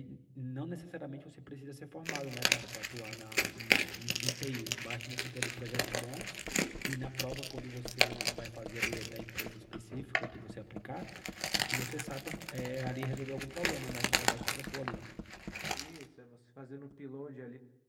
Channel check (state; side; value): identical; both; correlation 1.00